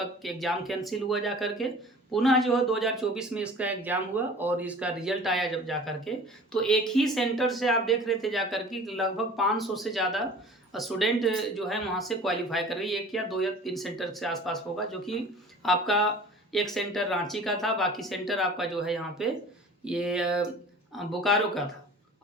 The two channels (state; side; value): normal; both; correlation 0.43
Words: एग्जाम कैंसिल हुआ जा करके पुनः जो है 2024 में इसका एग्जाम हुआ और इसका रिजल्ट आया जब जा करके। तो एक ही सेंटर से आप देख रहे थे जा करके लगभग 500 से ज़्यादा स्टूडेंट जो है वहाँ से क्वालिफाई कर रही है। एक या दो या तीन सेंटर से आसपास होगा, जो कि आपका एक सेंटर रांची का था, बाकी सेंटर आपका जो है यहाँ पे ये बोकारो का था।